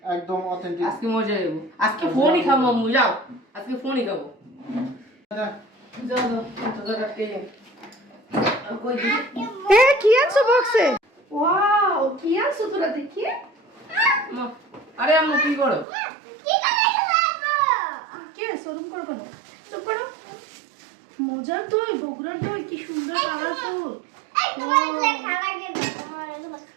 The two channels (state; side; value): drops out; left; at 15.9 s